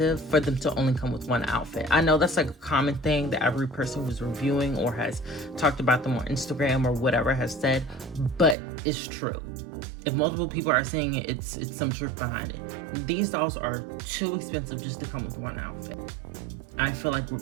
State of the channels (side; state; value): left; drops out; at 8.6 s